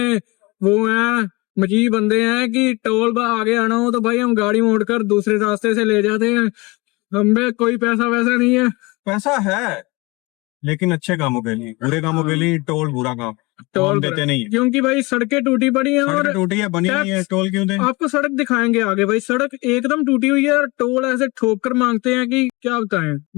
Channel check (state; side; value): quieter; right; 24.8 dB